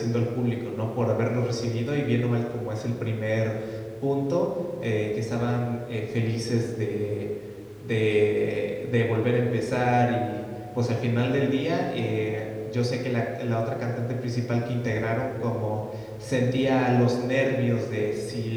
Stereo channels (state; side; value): identical; both; correlation 1.00